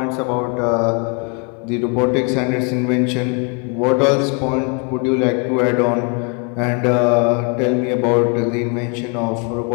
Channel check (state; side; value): quieter; right; 34.5 dB